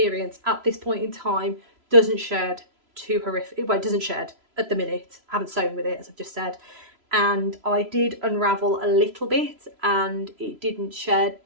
at this point in time, doesn't shed too horrific. Well, it doesn't shed at the minute. I haven't sewn with it, as I've just said, and I did unravel a little bit, and it didn't shed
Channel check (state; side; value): late; left; 3.0 ms